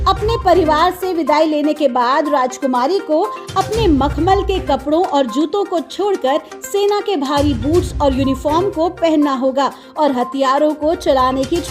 अपने परिवार से विदाई लेने के बाद राजकुमारी को अपने मखमल के कपड़ों और जूतों को छोड़कर सेना के भारी बूट्स और यूनिफॉर्म को पहनना होगा और हथियारों को चलाने की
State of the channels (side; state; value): both; identical; correlation 1.00